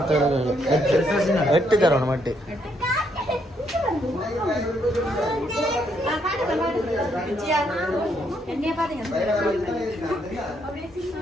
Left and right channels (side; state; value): both; normal; correlation 0.73